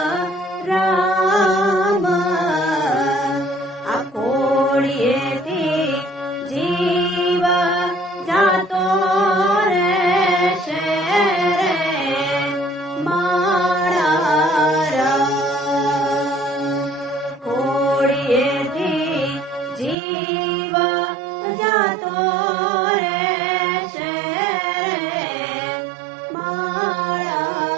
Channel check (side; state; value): left; drops out; at 20.0 s